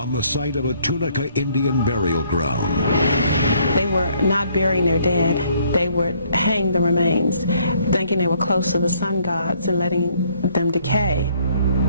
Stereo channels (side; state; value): both; inverted; correlation -0.65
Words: the site of a Tunica Indian burial ground. They were not burying their dead. They would hang the remains, thinking they were close to the sun gods and letting them decay.